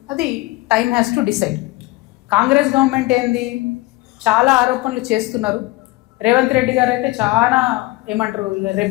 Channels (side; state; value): right; quieter; 20.9 dB